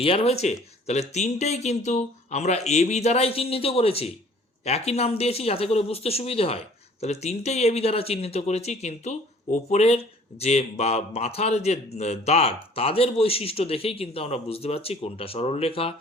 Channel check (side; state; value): both; normal; correlation 0.53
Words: হয়েছে? তাহলে তিনটেই কিন্তু আমরা এবি দ্বারাই চিহ্নিত করেছি, একই নাম দিয়েছি যাতে করে বুঝতে সুবিধে হয়। তাহলে তিনটেই এবি দ্বারা চিহ্নিত করেছি, কিন্তু ওপরের যে বা মাথার যে দাগ তাদের বৈশিষ্ট্য দেখেই কিন্তু আমরা বুঝতে পারছি কোনটা সরলরেখা,